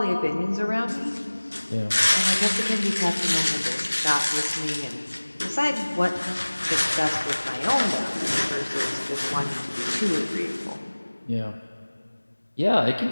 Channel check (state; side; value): inverted; both; correlation -1.00